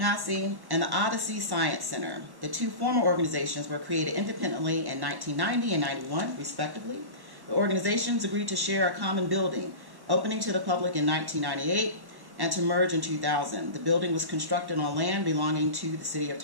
and the Odyssey Science Center. The two former organizations were created independently in 1990 and 91, respectively. The organizations agreed to share a common building, opening to the public in 1998 and to merge in 2000. The building was constructed on land belonging to the city of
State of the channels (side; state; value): left; late; 1.1 ms